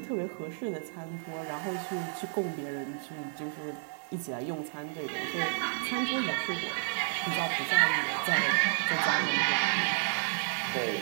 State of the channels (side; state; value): left; silent; digital silence